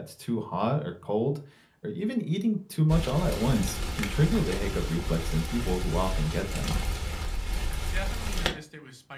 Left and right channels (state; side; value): identical; both; correlation 1.00